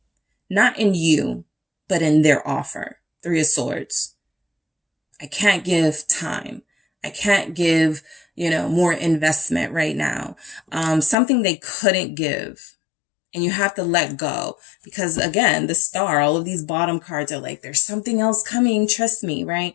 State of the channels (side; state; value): right; drops out; at 11.2 s